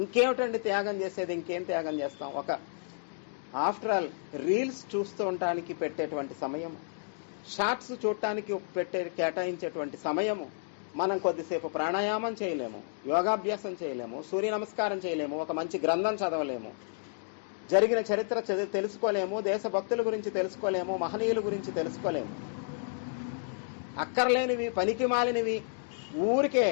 ఇంకేమిటండి త్యాగం చేసేది? ఇంకేం త్యాగం చేస్తాం? ఆఫ్టర్ ఆల్ రీల్స్ చూస్తూ ఉండటానికి పెట్టేటువంటి సమయము, షార్ట్స్ చూడటానికి కేటాయించేటువంటి సమయము, మనం కొద్దిసేపు ప్రాణాయామం చేయలేము, యోగాభ్యాసం చేయలేము, సూర్య నమస్కారం చేయలేము, ఒక మంచి గ్రంథం చదవలేము, జరిగిన చరిత్ర తెలుసుకోలేము, దేశభక్తుల గురించి తెలుసుకోలేము, మహనీయుల గురించి తెలుసుకోలేము. అక్కర్లేనివి, పనికి మాలినవి, ఊరికే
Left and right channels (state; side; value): silent; right; digital silence